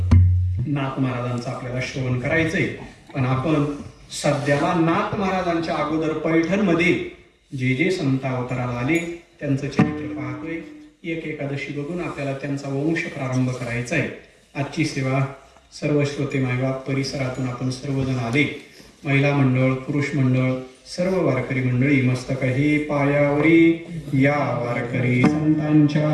नाथ महाराजांचं आपल्याला श्रवण करायचंय. पण आपण सध्याला नाथ महाराजांच्या अगोदर पैठणमध्ये जे जे संत अवताराला आले त्यांचं चरित्र पाहतोय. एक एकादशी बघून आपल्याला त्यांचा वंश प्रारंभ करायचा आहे. आजची सेवा सर्व श्रोते मायबाप परिसरातून आपण सर्वजण आले. महिला मंडळ, पुरुष मंडळ, सर्व वारकरी मंडळी मस्तक हे पायावरी. या वारकरी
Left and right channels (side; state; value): both; identical; correlation 1.00